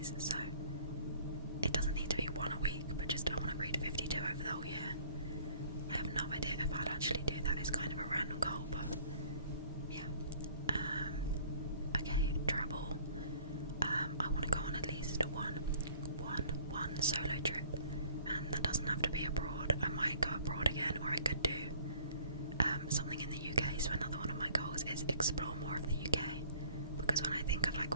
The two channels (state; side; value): inverted; both; correlation -0.54